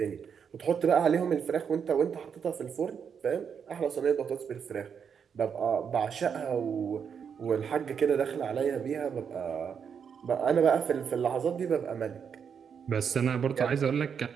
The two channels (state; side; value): quieter; left; 7.0 dB